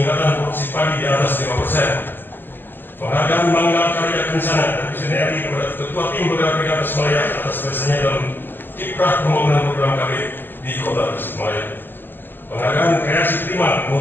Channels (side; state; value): right; late; 0.095 ms